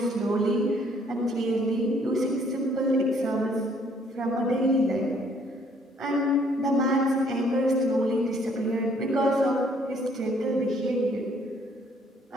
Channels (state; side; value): normal; both; correlation 0.63